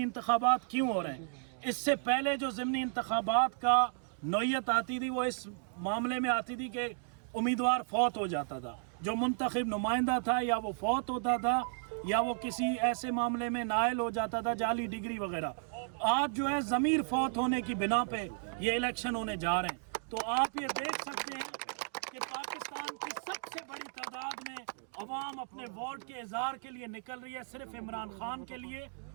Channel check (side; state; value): left; silent; digital silence